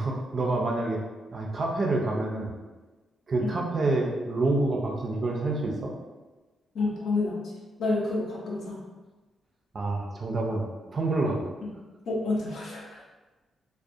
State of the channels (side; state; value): both; normal; correlation 0.78